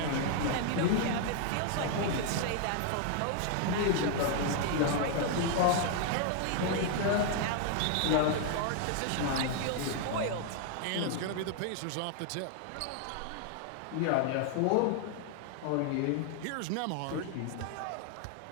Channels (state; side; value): different; both; correlation 0.00